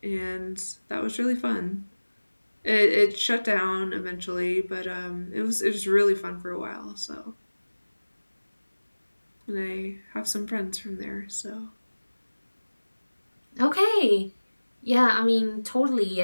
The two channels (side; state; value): both; inverted; correlation -1.00